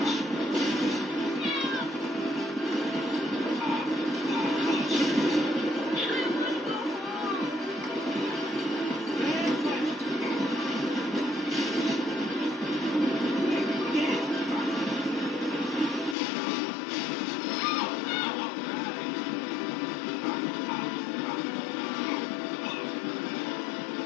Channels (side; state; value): right; drops out; at 16.2 s